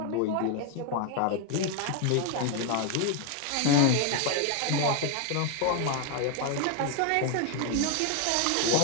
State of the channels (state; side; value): different; both; correlation 0.01